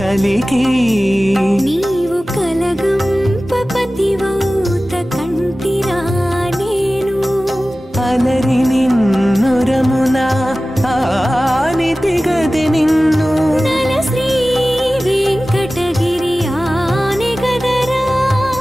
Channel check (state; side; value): normal; both; correlation 0.96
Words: నీవు కలగంపపతివౌత కంటిరా నేను అలరి నిన్నురమున ఆనితి గదె నిన్ను నల శ్రీ వెంకటగిరి ఆనే గదరా